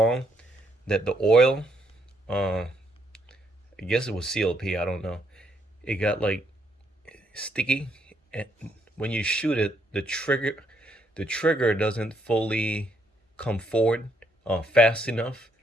that the oil, I guess it was CLP, I don't know. It got like sticky, and when you shoot it, the trigger doesn't fully come forward fast enough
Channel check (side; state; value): both; normal; correlation 0.73